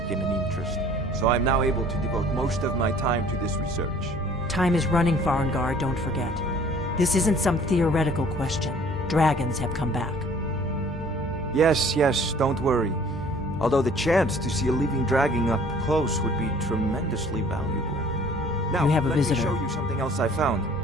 an interest, so I'm now able to devote most of my time to this research. Time is running, Farengar, don't forget. This isn't some theoretical question. Dragons have come back. Yes, don't worry. Although the chance to see a living dragon up close would be tremendously valuable. Now, You have a let visitor. me show you something else I found.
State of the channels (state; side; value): normal; both; correlation 0.53